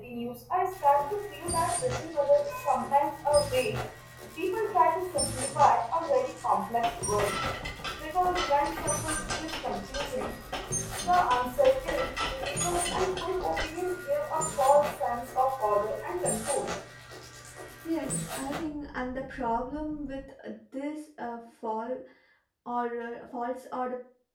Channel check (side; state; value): both; identical; correlation 1.00